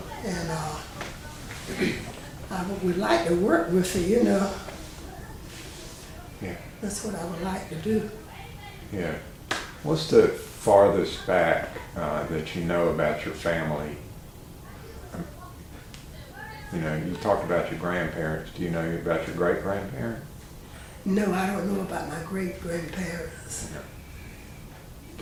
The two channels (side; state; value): both; identical; correlation 1.00